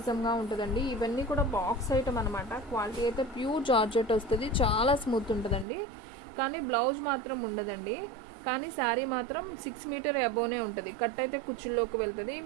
ఉంటుందండి. ఇవన్నీ కూడా బాక్స్ ఐటమ్ అనమాట. క్వాలిటీ అయితే ప్యూర్ జార్జెట్ వస్తుంది, చాలా స్మూత్ ఉంటుందండి. కానీ బ్లౌజ్ మాత్రం ఉండదండి. కానీ శారీ మాత్రం 6 మీటర్ అబోనే ఉంటుంది. కట్ అయితే కుచ్చుల్లోకి వెళ్తుంది.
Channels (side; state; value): left; drops out; at 5.7 s